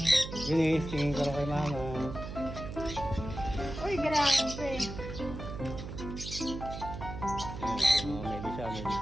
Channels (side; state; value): right; noise; hum, 8 dB below the sound